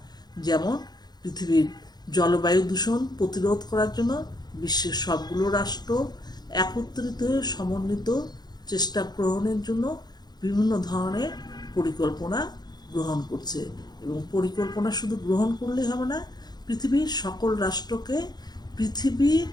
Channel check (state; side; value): late; right; 0.20 ms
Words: যেমন পৃথিবীর জলবায়ু দূষণ প্রতিরোধ করার জন্য বিশ্বের সবগুলো রাষ্ট্র একত্রিত হয়ে সমন্বিত চেষ্টা গ্রহণের জন্য বিভিন্ন ধরনের পরিকল্পনা গ্রহণ করছে। এবং পরিকল্পনা শুধু গ্রহণ করলেই হবে না, পৃথিবীর সকল রাষ্ট্রকে পৃথিবীর